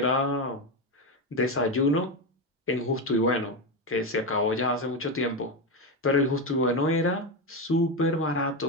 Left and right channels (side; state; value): both; normal; correlation 0.12